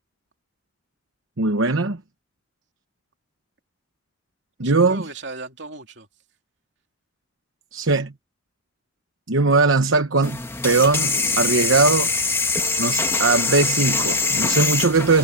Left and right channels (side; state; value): both; normal; correlation -0.03